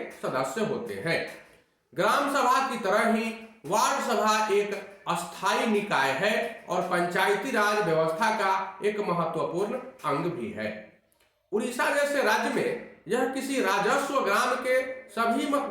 सदस्य होते हैं। ग्राम सभा की तरह ही वार्ड सभा एक अस्थायी निकाय है और पंचायती राज व्यवस्था का एक महत्वपूर्ण अंग भी है। उड़ीसा जैसे राज्य में यह किसी राजस्व ग्राम के सभी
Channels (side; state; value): both; identical; correlation 1.00